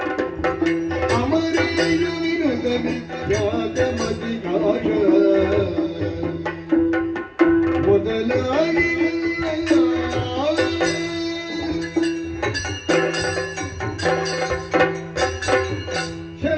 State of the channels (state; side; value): identical; both; correlation 1.00